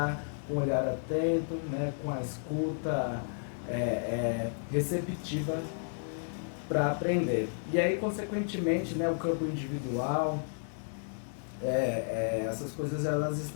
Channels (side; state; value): right; silent; digital silence